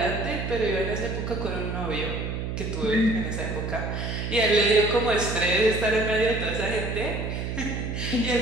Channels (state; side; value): noise; right; hum, 4 dB below the sound